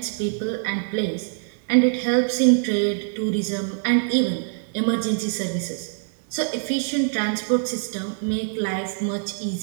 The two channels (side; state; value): left; silent; digital silence